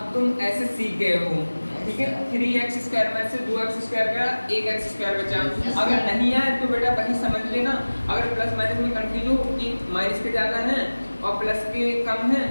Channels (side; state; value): both; inverted; correlation -1.00